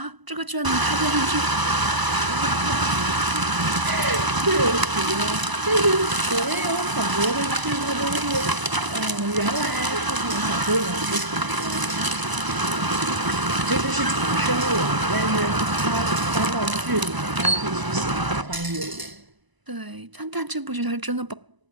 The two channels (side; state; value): left; late; 1.0 ms